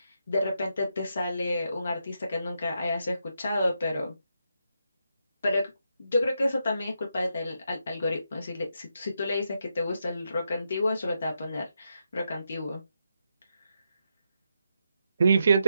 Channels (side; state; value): both; inverted; correlation -0.83